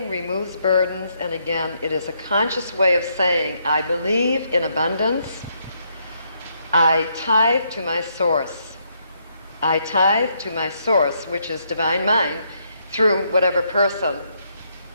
removes burdens, and again, it is a conscious way of saying, I believe in abundance. I tithe to my source. I tithe to my source, which is divine mind, through whatever person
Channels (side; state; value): both; inverted; correlation -0.75